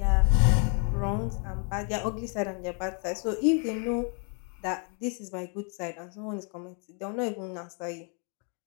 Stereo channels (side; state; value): right; quieter; 39.2 dB